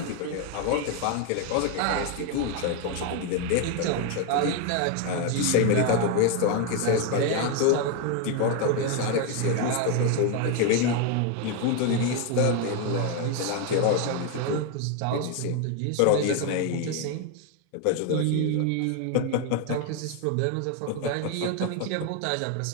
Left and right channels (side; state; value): both; different; correlation 0.01